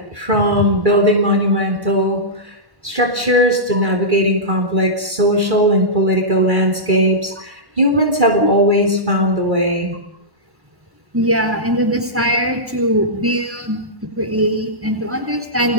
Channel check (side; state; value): left; late; 1.1 ms